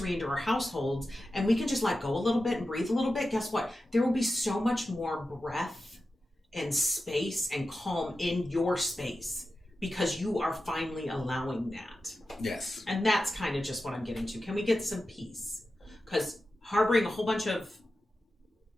into our households, and we can just let go a little bit and breathe a little bit, guess what? There will be so much more breath and space and calm in your space, because you are finally allowing that. Yes. And that's kind of just what I'm getting to. Can we get some peace? Because harboring a whole bunch of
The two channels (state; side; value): normal; both; correlation 0.92